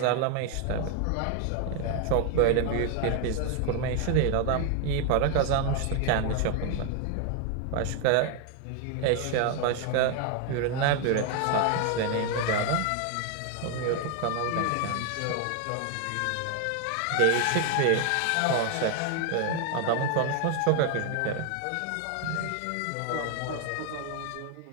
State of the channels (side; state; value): both; different; correlation 0.01